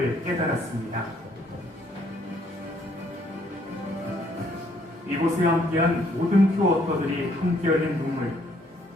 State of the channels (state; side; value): normal; both; correlation 0.66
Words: 깨달았습니다. 이곳에 함께한 모든 퓨어워터들이 함께 흘린 눈물,